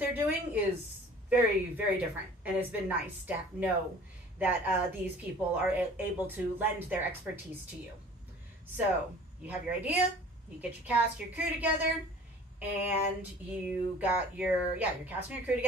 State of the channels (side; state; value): both; normal; correlation 0.47